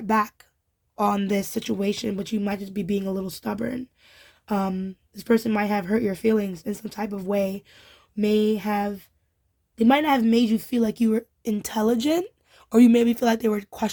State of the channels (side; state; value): both; identical; correlation 1.00